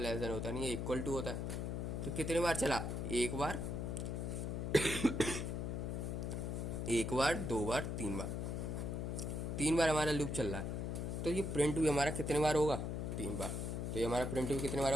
देन होता नहीं है, इक्वल टू होता है। तो कितनी बार चला, एक बार, एक बार, 2 बार, 3 बार, 3 बार हमारा लूप चल रहा है। तो ये प्रिंट भी हमारा कितने बार होगा, 3 बार। तो ये हमारा प्रिंट भी कितने बार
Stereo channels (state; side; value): noise; left; hum, 2 dB below the sound